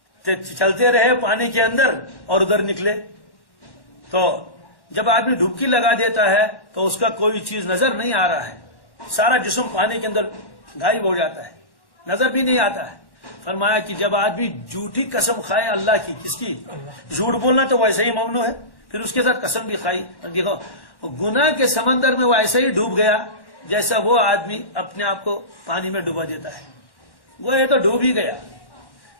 چلتے رہے پانی کے اندر اور ادھر نکلے، تو جب آدمی ڈبکی لگا دیتا ہے تو اس کا کوئی چیز نظر نہیں آ رہا ہے، سارا جسم پانی کے اندر غائب ہو جاتا ہے، نظر بھی نہیں آتا ہے۔ فرمایا کہ جب آدمی جھوٹی قسم کھائے اللہ کی، کس کی؟ جھوٹ بولنا تو ویسے ہی ممنوع ہے، پھر اس کے ساتھ قسم بھی کھائی، دیکھو گناہ کے سمندر میں وہ ایسے ہی ڈوب گیا جیسا وہ آدمی اپنے آپ کو پانی میں ڈوبا دیتا ہے، وہ یہ تو ڈوب ہی گیا،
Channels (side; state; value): right; late; 1.1 ms